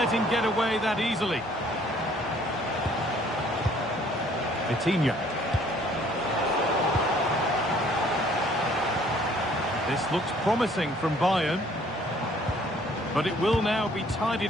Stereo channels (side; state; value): both; normal; correlation 0.59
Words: him get away that easily. Vitinha. This looks promising from Bayern. But it will now be